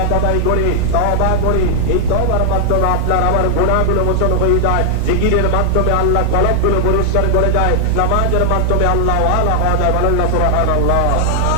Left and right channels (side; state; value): both; different; correlation 0.00